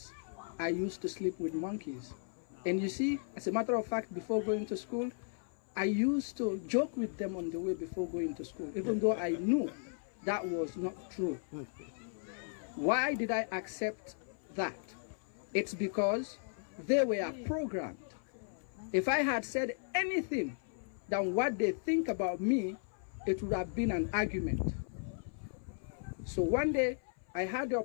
I used to sleep with monkeys. And you see, as a matter of fact, before going to school, I used to joke with them on the way before going to school, even though I knew that was not true. Why did I accept that? It's because they were programmed. If I had said anything than what they think about me, it would have been an argument. So one day, I had the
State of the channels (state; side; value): silent; right; 54 dB below the other